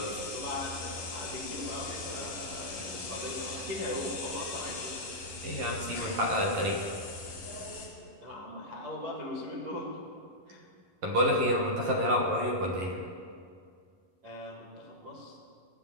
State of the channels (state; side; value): late; left; 11 ms